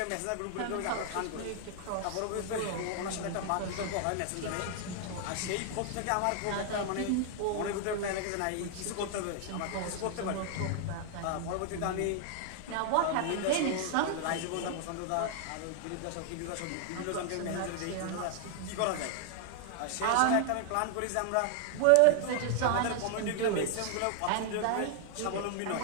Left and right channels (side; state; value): both; different; correlation 0.00